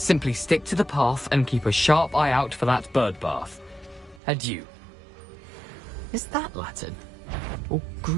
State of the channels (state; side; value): drops out; left; at 4.2 s